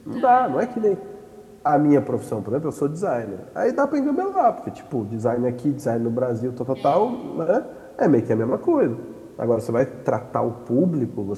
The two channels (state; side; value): identical; both; correlation 1.00